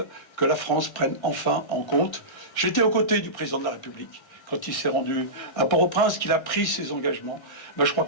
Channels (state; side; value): late; right; 1.6 ms